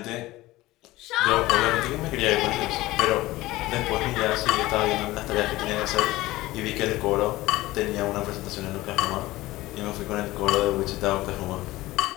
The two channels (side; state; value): right; quieter; 18.1 dB